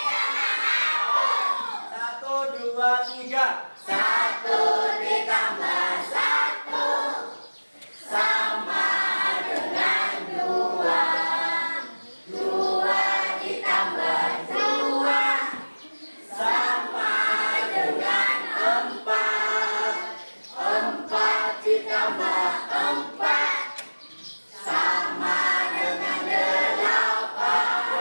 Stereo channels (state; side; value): inverted; both; correlation -1.00